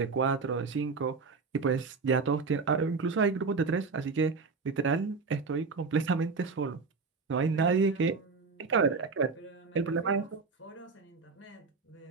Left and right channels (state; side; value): quieter; left; 4.5 dB